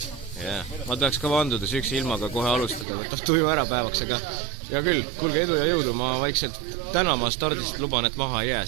Yeah. Ma tahaks ka vanduda sükse ilmaga kohe alustada, võtab tuju ära päevaks, aga ja küll, kuulge edu ja jõudu, ma vaikselt täna ma stardist luban, et maha ei jää,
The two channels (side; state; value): left; drops out; at 2.9 s